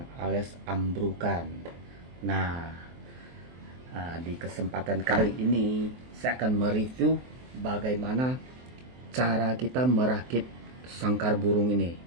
alias ambrukan. Nah, di kesempatan kali ini saya akan mereview bagaimana cara kita merakit sangkar burung ini.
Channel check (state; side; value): late; left; 23 ms